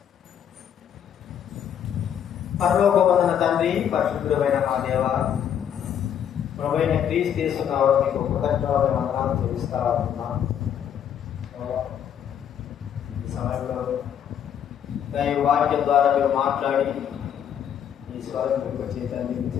పరలోకమందున తండ్రి, పరిశుద్ధుడైన మా దేవ, ప్రభువైన క్రీస్తు యేసు నామమున మీకు కృతజ్ఞతలు వందనాలు చెల్లిస్తా ఉన్నాం. ఈ సమయంలో దైవ వాక్యం ద్వారా మీరు మాట్లాడి ఈ స్వరం మీకు చేతండి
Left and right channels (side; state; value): right; quieter; 9.1 dB